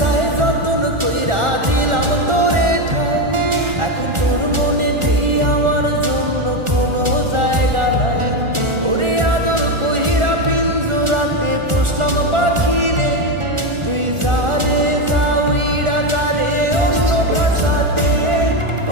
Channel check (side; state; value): left; late; 1.4 ms